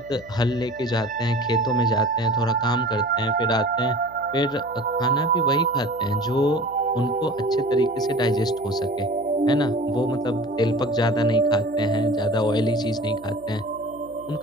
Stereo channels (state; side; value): noise; right; hum, 24 dB below the sound